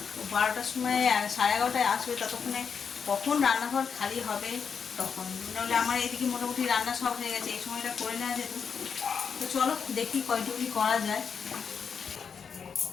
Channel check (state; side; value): quieter; right; 6.4 dB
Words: 12টার সময় 11:30টায় আসবে, ততক্ষণে কখন রান্নাঘর খালি হবে তখন, নাহলে আমার এদিকে মোটামুটি রান্না সব হয়ে গেছে, এই সময়টা করে নেওয়া যেত। তো চলো দেখি কয়টুকু করা যায়।